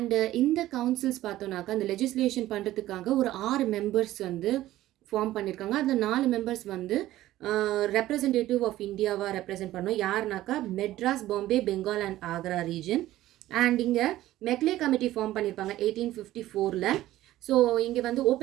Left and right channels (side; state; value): left; quieter; 15.0 dB